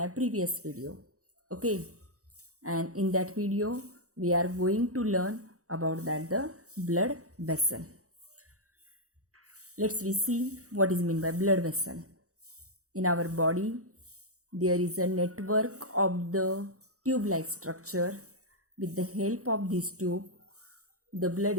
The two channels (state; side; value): late; left; 0.65 ms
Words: previous video. Okay, and in that video we are going to learn about that the blood vessel. Let's we see what is meant by blood vessel. In our body there is a network of the tube-like structure. With the help of this tube, the